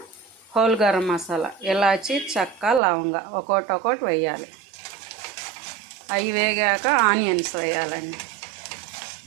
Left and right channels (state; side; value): drops out; left; at 2.8 s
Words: హోల్ గరం మసాలా, ఇలాచి, చెక్క, లవంగ ఒక్కొక్కటి వేయాలి. అవి వేగాక ఆనియన్స్ వేయాలండి.